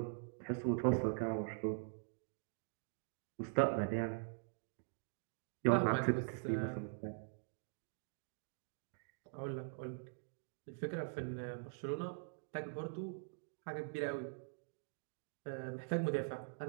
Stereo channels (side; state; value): left; silent; digital silence